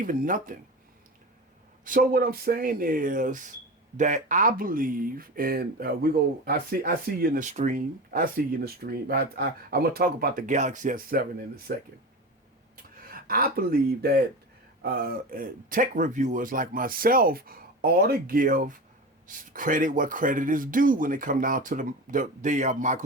nothing. So what I'm saying is that I believe, and I see you in the stream. I see you in the stream. I'm gonna talk about the Galaxy S7 in a second. I believe that tech reviewers like myself ought to give credit what credit is due when it comes down to the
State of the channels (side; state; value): both; normal; correlation 0.27